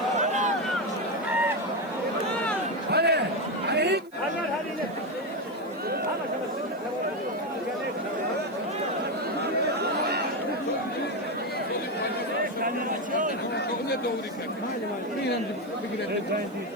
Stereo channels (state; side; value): noise; right; hiss, 29 dB below the sound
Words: Ne doğru ki?